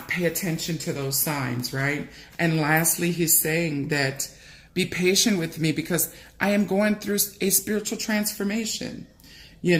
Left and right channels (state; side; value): identical; both; correlation 1.00